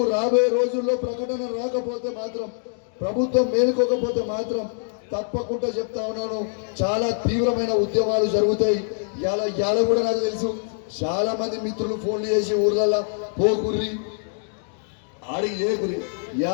రాబోయే రోజుల్లో ప్రకటన రాకపోతే మాత్రం, ప్రభుత్వం మేలుకోకపోతే మాత్రం తప్పకుండా చెప్తా ఉన్నాను, చాలా తీవ్రమైన ఉద్యమాలు జరుగుతాయి. ఇవాళ కూడా నాకు తెలుసు, చాలా మంది మిత్రులు ఫోన్లు చేసి ఊర్లలో పోకుర్రి ఆడికి చేయకుర్రి.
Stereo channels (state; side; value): silent; right; digital silence